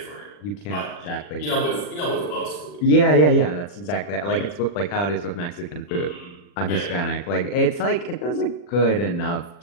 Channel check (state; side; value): late; right; 40 ms